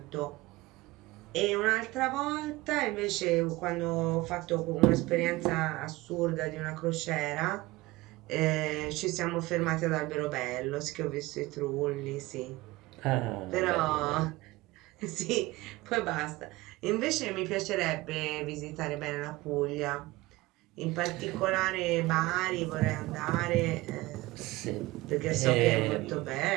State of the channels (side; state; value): left; quieter; 20.2 dB